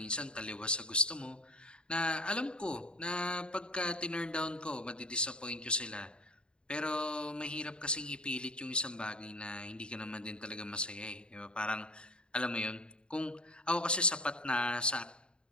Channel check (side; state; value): right; late; 0.053 ms